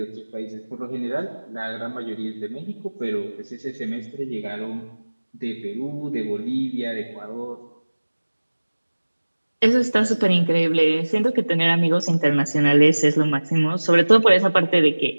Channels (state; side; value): inverted; both; correlation -1.00